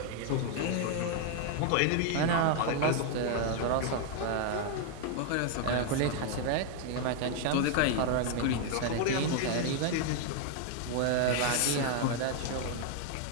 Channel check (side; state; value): both; different; correlation 0.00